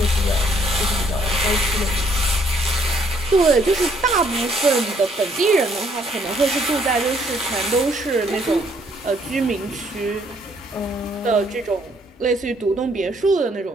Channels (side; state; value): both; normal; correlation 0.67